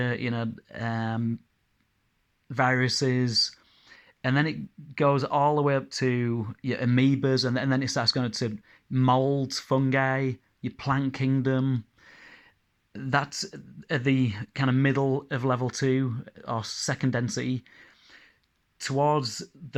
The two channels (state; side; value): identical; both; correlation 1.00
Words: viruses, and then it goes all the way up to your amoebas, and then it starts going to molds, fungi, your plant kingdom. That's at the kind of middle of level 2 or second density. Towards